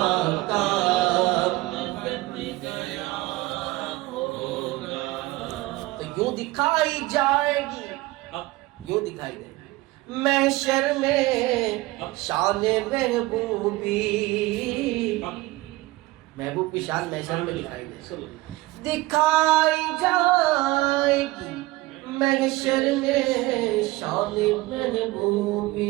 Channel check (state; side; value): quieter; left; 19.9 dB